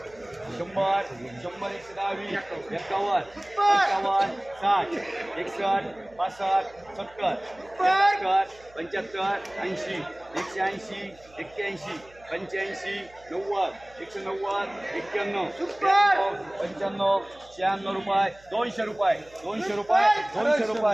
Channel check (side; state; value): right; noise; hum, 26 dB below the sound